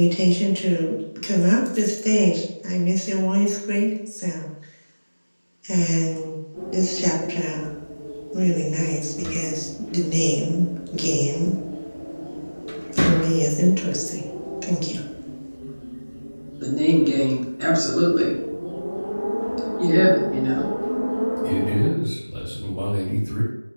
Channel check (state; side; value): inverted; both; correlation -1.00